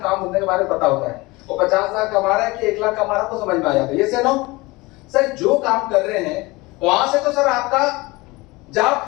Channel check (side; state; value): right; quieter; 22.7 dB